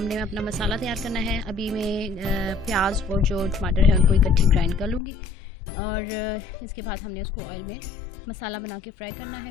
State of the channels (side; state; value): right; drops out; at 5.0 s